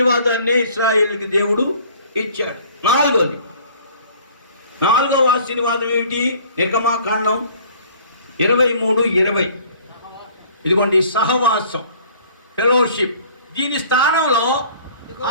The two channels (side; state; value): both; inverted; correlation -0.52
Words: ఇశ్రాయేలుకి దేవుడు ఇచ్చాడు. నాలుగవ ఆశీర్వాదం ఏమిటి? నిర్గమాకాండం 23:20. ఇదిగోండి, సహవాసం, ఫెలోషిప్. దీని స్థానంలో